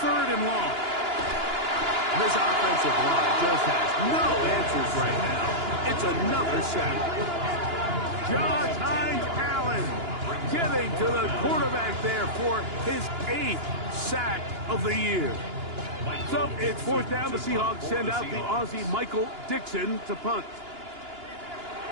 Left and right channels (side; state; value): left; late; 2.9 ms